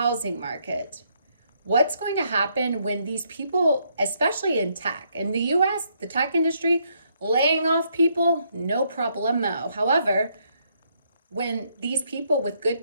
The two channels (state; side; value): inverted; both; correlation -0.73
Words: market. What's going to happen when these people, especially in tech, in the US, the tech industry, laying off people, no problemo. However, when these people with good